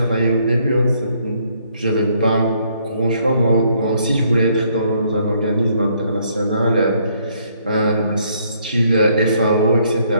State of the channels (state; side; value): inverted; both; correlation -0.68